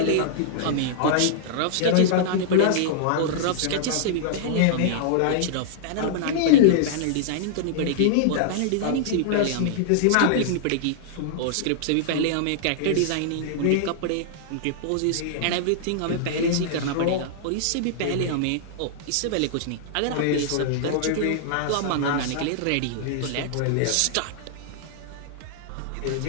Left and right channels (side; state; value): both; different; correlation -0.01